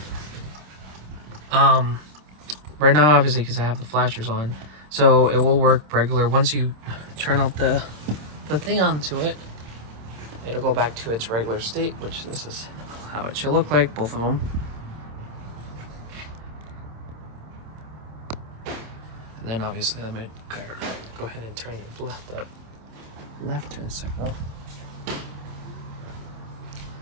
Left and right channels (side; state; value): left; late; 26 ms